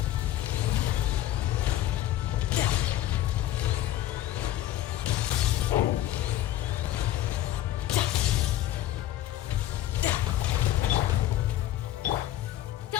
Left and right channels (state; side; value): quieter; right; 13.4 dB